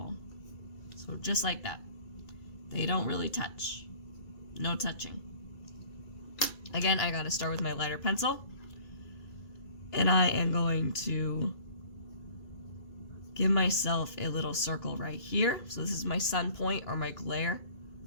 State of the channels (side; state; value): right; late; 2.3 ms